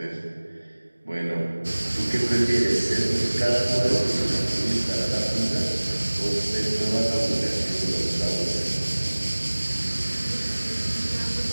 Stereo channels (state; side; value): inverted; both; correlation -1.00